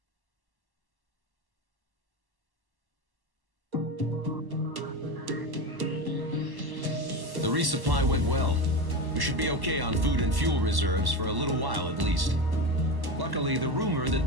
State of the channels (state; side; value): late; left; 1.1 ms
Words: The resupply went well. We should be okay on food and fuel reserves for a little while at least. Luckily, the rumor that